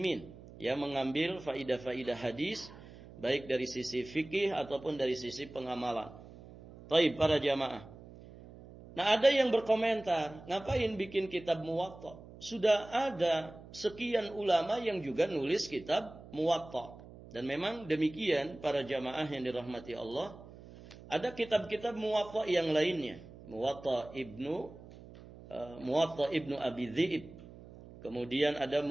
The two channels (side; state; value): right; noise; hum, 18 dB below the sound